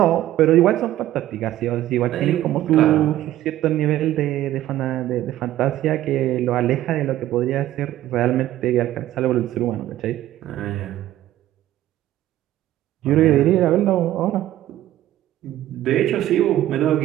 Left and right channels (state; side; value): quieter; left; 13.8 dB